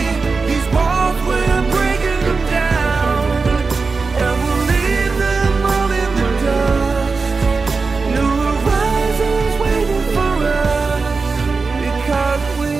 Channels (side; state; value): left; quieter; 4.4 dB